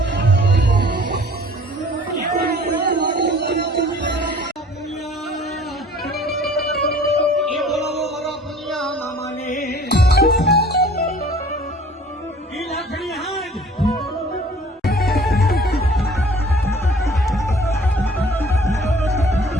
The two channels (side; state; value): both; normal; correlation 0.51